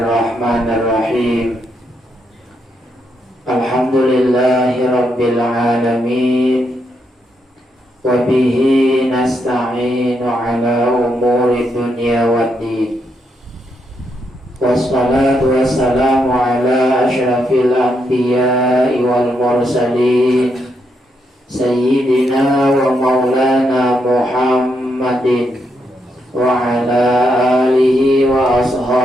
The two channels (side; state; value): both; normal; correlation 0.79